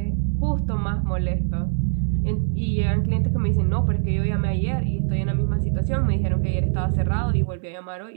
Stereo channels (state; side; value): silent; left; digital silence